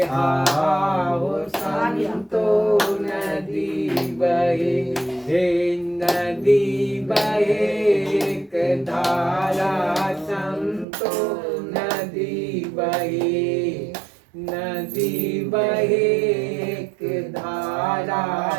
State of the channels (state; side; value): drops out; left; at 10.9 s